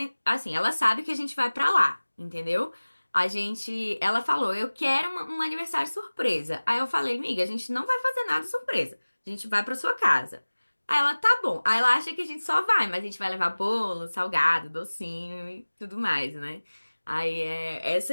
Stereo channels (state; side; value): inverted; both; correlation -1.00